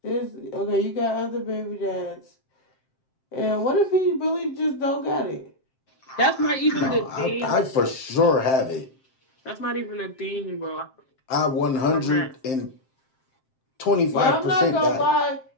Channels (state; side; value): late; right; 7.6 ms